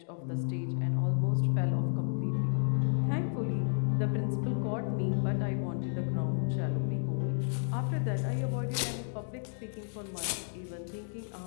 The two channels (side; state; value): right; silent; digital silence